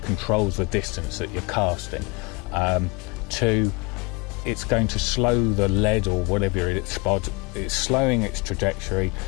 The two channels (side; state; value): right; quieter; 27.7 dB